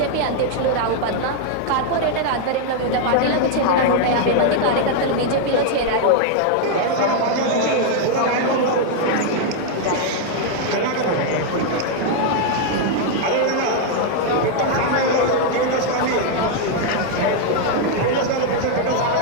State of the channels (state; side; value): different; both; correlation 0.00